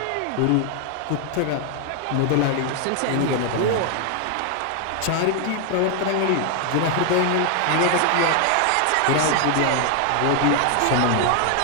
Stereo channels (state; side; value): different; both; correlation 0.00